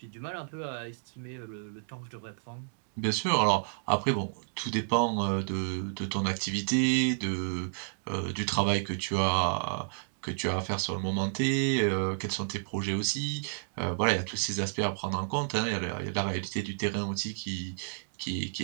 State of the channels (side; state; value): left; silent; digital silence